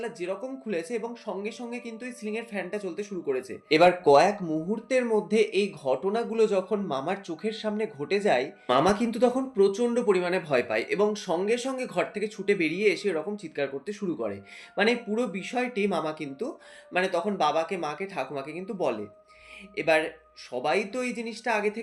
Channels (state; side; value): identical; both; correlation 1.00